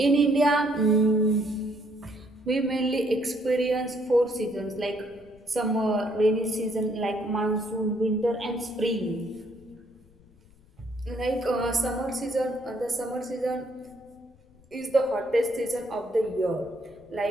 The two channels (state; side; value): noise; left; rumble, 28 dB below the sound